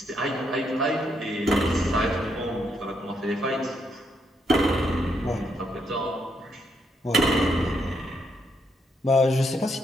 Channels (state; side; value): normal; both; correlation 0.76